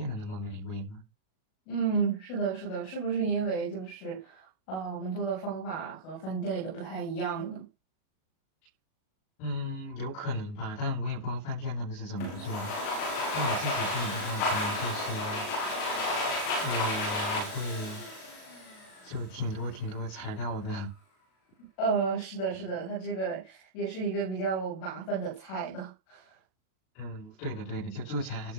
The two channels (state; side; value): late; right; 37 ms